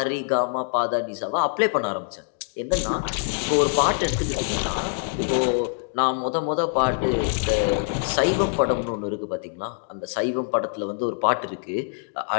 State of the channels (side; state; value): right; silent; digital silence